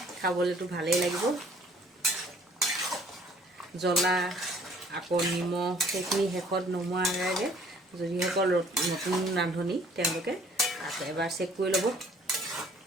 খাবলৈতো ভালেই লাগিব। জ্বলা আকৌ নিমখ সেইখিনি শেষত নমোৱাৰ আগে যিসকল নতুন ৰান্ধনি তেওঁলোকে এবাৰ চেক কৰি ল'ব,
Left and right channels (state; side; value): normal; both; correlation 0.57